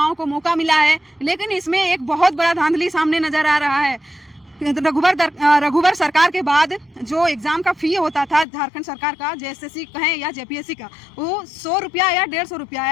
को मौका मिला है, लेकिन इसमें एक बहुत बड़ा धांधली सामने नजर आ रहा है। रघुवर सरकार के बाद जो एग्जाम का फी होता था झारखंड सरकार का, जेएसएससी कहें या जेपीएससी का, वो 100 रुपया या 150 रुपया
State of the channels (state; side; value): drops out; right; at 8.5 s